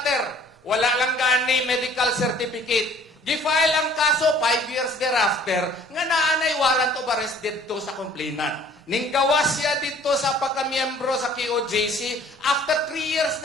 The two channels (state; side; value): normal; both; correlation 0.54